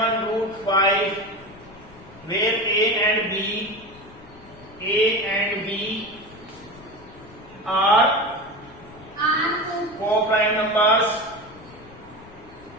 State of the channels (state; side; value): noise; left; rumble, 22 dB below the sound